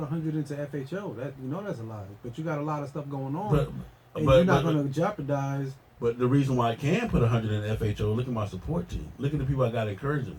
into FHO. That that's a lie. But you got a lot of stuff going on, and you're not going to jeopardize. But the reason why I can put 100 in FHO, look at my support team. Look at the people I got encouraging me.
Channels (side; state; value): both; identical; correlation 1.00